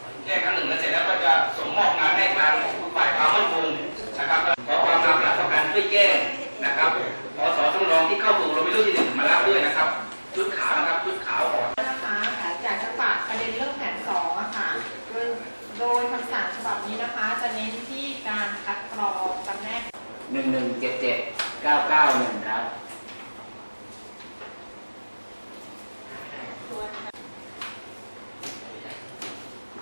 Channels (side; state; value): both; inverted; correlation -1.00